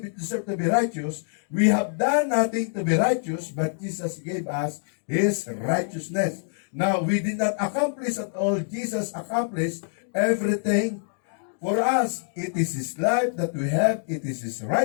to be righteous. We have done nothing to be righteous, but Jesus gave us His righteousness. Now, we did not accomplish at all. Jesus accomplished everything for us. It is His life that we have. It is His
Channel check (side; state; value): right; silent; digital silence